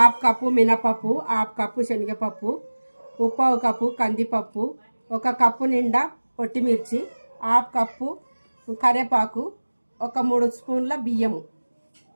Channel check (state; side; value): inverted; both; correlation -1.00